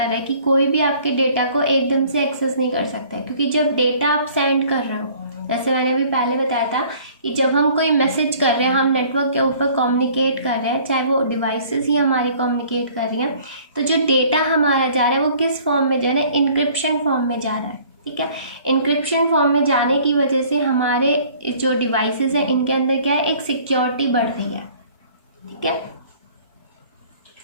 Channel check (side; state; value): both; inverted; correlation -0.54